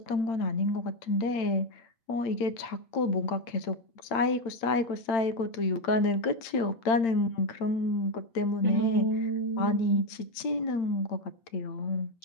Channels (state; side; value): late; right; 8.8 ms